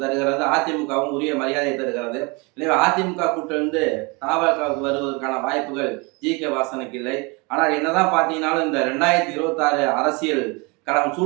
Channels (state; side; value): quieter; left; 28.4 dB